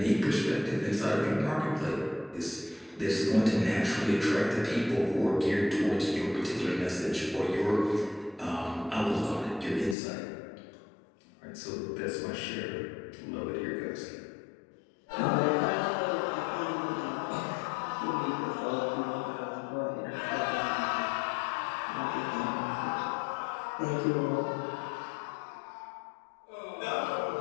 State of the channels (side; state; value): right; drops out; at 10.0 s